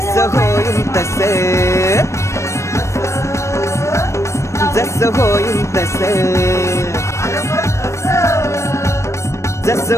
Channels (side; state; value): right; late; 0.14 ms